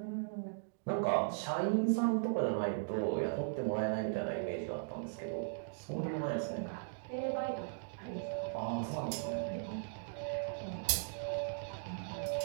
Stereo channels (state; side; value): silent; left; digital silence